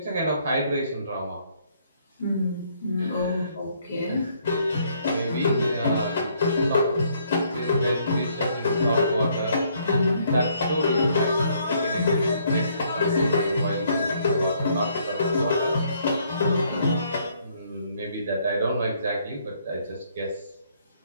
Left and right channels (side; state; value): both; inverted; correlation -0.67